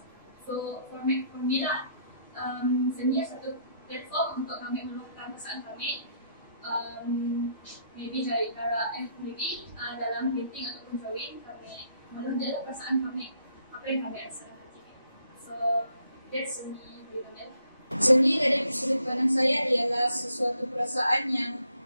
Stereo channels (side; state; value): both; inverted; correlation -0.71